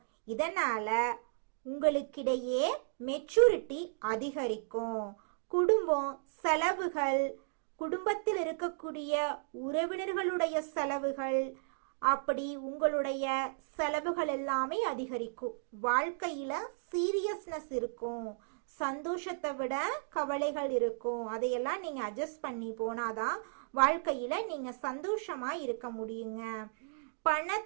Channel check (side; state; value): left; silent; digital silence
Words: இதனால உங்களுக்கிடையே மெச்சூரிட்டி அதிகரிக்கும். குடும்பம் செலவுகள், குடும்பத்தில் இருக்கக்கூடிய உறவினர்களுடைய செலவுகள், அப்படி உங்களுடைய செலவுகள் எல்லாமே அதிகரிக்கும். வாழ்க்கையில சீரியஸ்னஸ் இருக்கும், சந்தோஷத்தை விட கவலைகள் இருக்கும். அதையெல்லாம் நீங்க அட்ஜஸ்ட் பண்ணி போனாதான் வாழ்க்கையில நீங்க சந்தோஷமா இருக்க முடியுங்க.